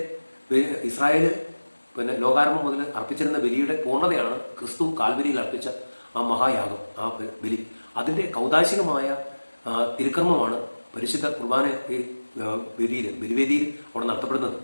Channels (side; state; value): both; inverted; correlation -1.00